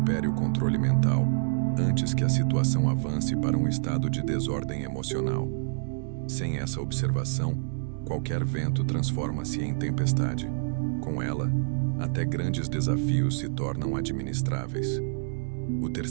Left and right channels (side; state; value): left; silent; digital silence